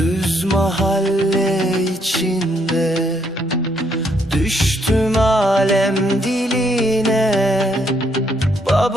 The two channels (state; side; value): normal; both; correlation 0.72